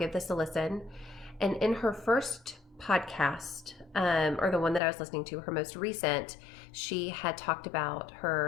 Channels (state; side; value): drops out; right; at 4.8 s